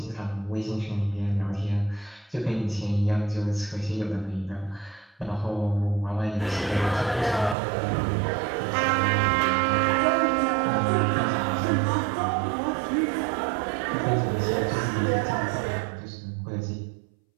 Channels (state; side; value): drops out; left; at 7.6 s